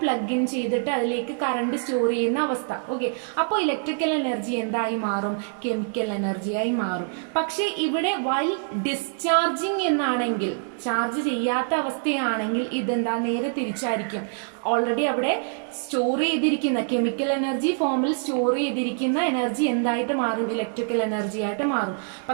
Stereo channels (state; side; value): silent; left; 62 dB below the other